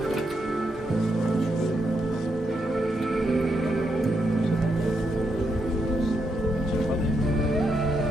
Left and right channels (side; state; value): both; normal; correlation 0.81